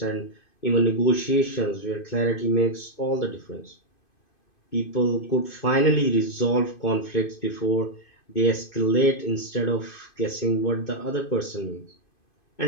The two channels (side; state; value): right; late; 2.5 ms